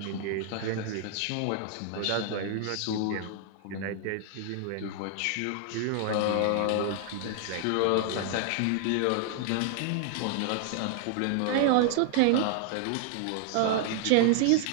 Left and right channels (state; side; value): different; both; correlation 0.00